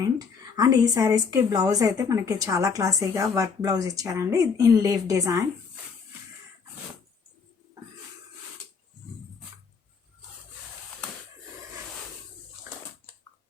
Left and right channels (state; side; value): quieter; right; 5.6 dB